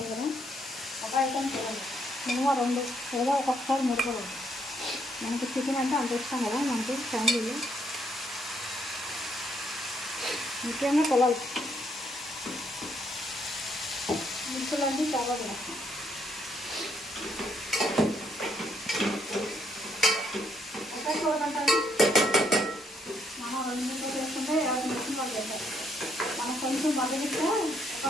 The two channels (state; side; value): normal; both; correlation 0.72